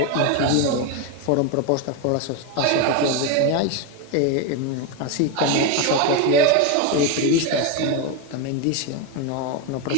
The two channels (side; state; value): both; different; correlation 0.03